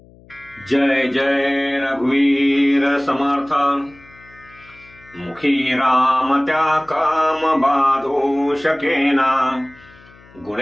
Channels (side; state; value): left; noise; hum, 25 dB below the sound